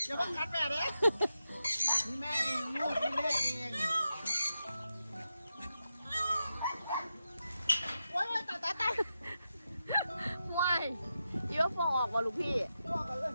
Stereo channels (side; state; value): both; inverted; correlation -0.88